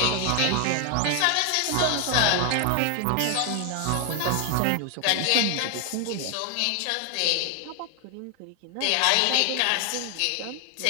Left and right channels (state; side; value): different; both; correlation 0.01